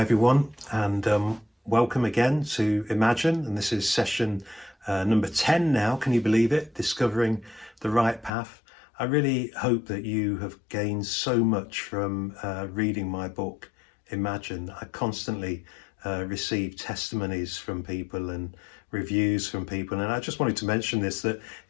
everyone, and welcome again to Imagine. And this is session number 10 now. Can you believe it? Discovering the right path. I really hope that you have gained so much from reading my book, Imagine. I constantly receive testimonies from people and reviews from people. And I just wanted to mention this, that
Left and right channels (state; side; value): drops out; right; at 8.3 s